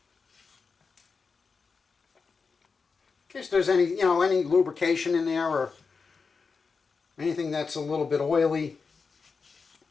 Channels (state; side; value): quieter; right; 5.0 dB